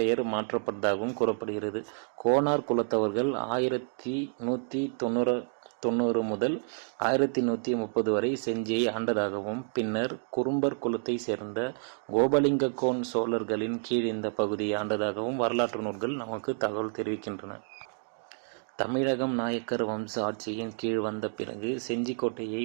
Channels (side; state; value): left; silent; digital silence